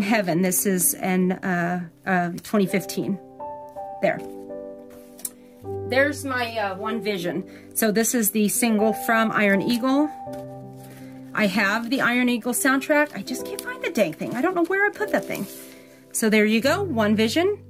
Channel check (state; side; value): identical; both; correlation 1.00